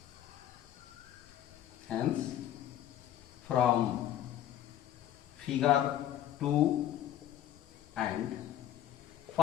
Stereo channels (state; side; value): quieter; right; 11.8 dB